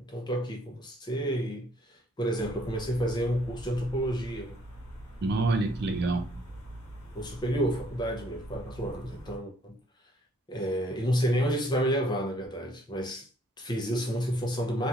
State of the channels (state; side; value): normal; both; correlation 0.64